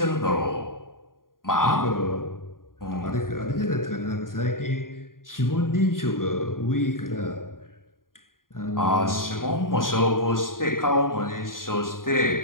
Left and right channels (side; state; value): right; late; 0.91 ms